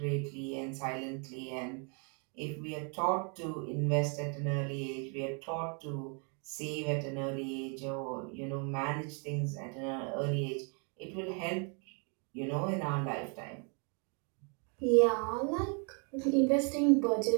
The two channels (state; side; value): quieter; left; 37.6 dB